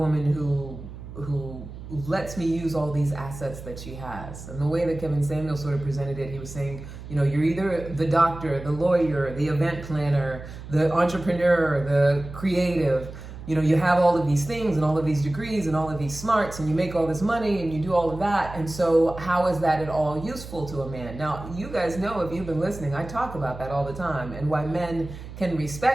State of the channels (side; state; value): right; noise; hum, 13 dB below the sound